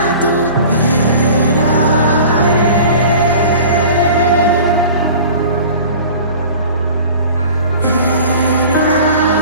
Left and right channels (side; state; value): both; inverted; correlation -0.42